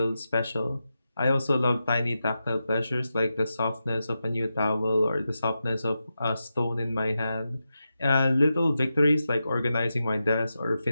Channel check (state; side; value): inverted; both; correlation -0.90